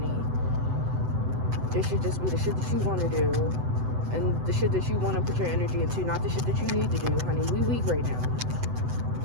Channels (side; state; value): left; late; 7.9 ms